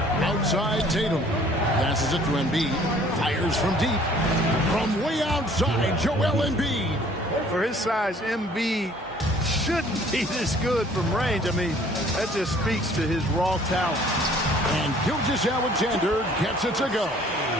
Outside Tatum. Passes it to Embiid. Fires from deep. From way outside, Joel Embiid. For his size, Embiid shouldn't be this good from range. I mean, that just speaks to his raw talent. And Gilgeous-Alexander gets it to go.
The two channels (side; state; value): both; normal; correlation 0.55